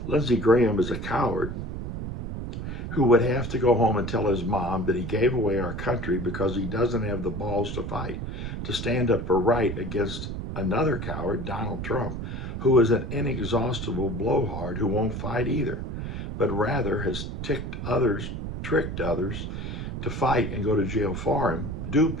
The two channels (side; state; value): right; noise; rumble, 5 dB below the sound